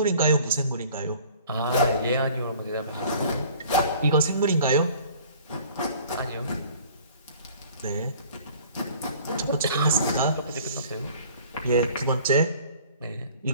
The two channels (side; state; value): both; inverted; correlation -0.50